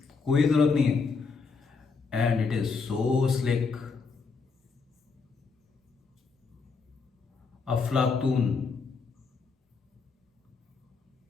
कोई जरूरत नहीं है। And it is so slick, अफलातून।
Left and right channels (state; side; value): quieter; right; 4.9 dB